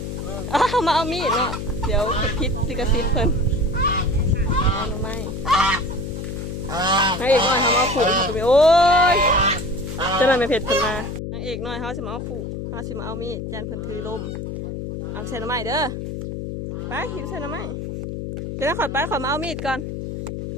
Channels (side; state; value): left; noise; hum, 6 dB below the sound